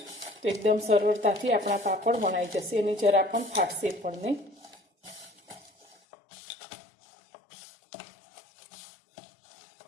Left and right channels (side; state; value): right; drops out; at 6.0 s